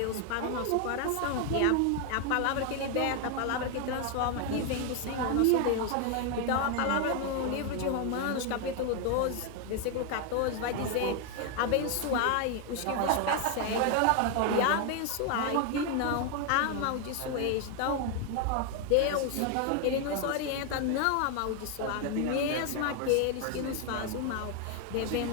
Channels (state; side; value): different; both; correlation 0.01